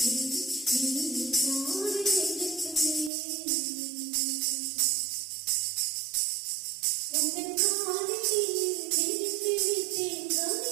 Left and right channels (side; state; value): left; drops out; at 3.1 s